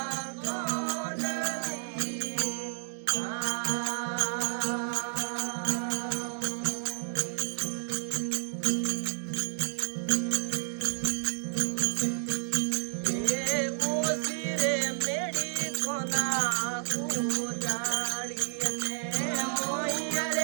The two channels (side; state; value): left; silent; 57 dB below the other